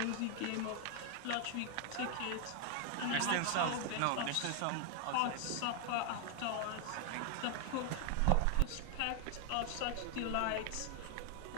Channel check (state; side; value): different; both; correlation 0.00